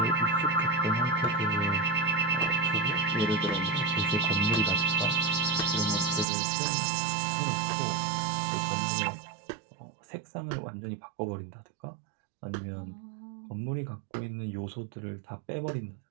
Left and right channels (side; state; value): left; drops out; at 6.2 s